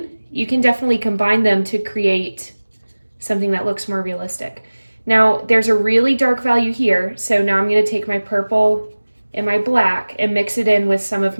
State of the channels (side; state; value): both; inverted; correlation -1.00